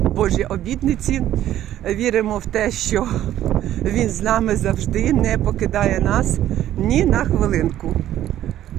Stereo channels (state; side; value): quieter; left; 12.4 dB